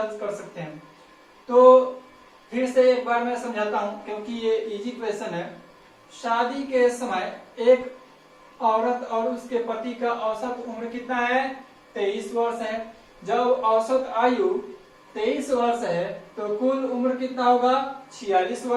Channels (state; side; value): identical; both; correlation 1.00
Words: कर सकते हैं। तो फिर से एक बार मैं समझाता हूं क्योंकि ये इजी क्वेश्चन है। शादी के समय एक औरत और उसके पति का औसत उम्र कितना है? 23 वर्ष है। जब औसत आयु 23 वर्ष है तो कुल उम्र कितना होगा? 46